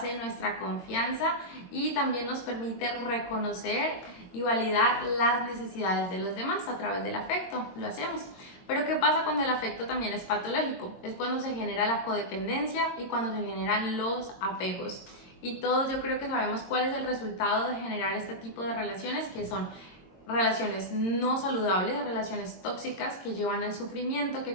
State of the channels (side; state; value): right; late; 22 ms